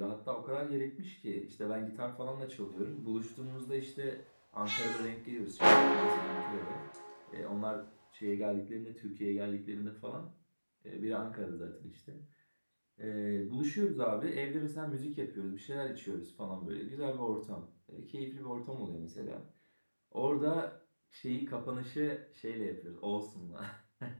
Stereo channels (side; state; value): both; inverted; correlation -1.00